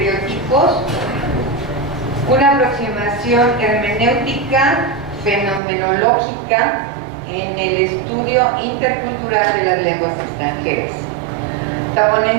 una aproximación hermenéutica fenomenológica en el estudio intercultural de las lenguas extranjeras. La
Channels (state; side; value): drops out; left; at 5.6 s